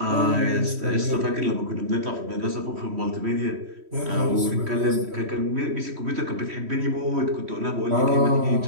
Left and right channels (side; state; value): left; late; 3.1 ms